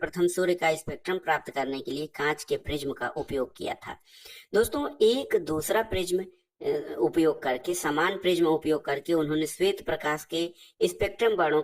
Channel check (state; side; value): identical; both; correlation 1.00